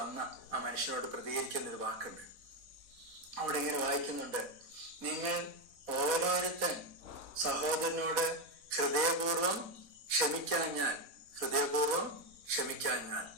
വന്ന ആ മനുഷ്യനോട് പ്രതികരിക്കുന്ന ഒരു വാക്കുണ്ട്. അവിടെ ഇങ്ങനെ വായിക്കുന്നുണ്ട്, നിങ്ങൾ ഓരോരുത്തൻ സഹോദരനോട് ഹൃദയപൂർവം ക്ഷമിക്കാൻ ഞാൻ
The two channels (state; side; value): late; left; 4.1 ms